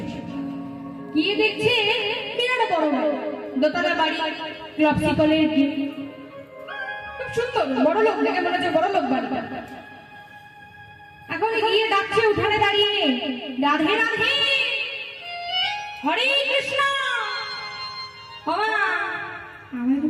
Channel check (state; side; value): identical; both; correlation 1.00